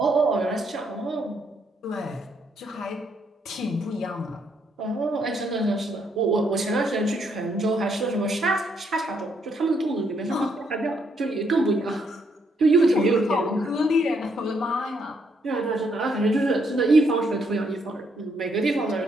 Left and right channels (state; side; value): normal; both; correlation 0.73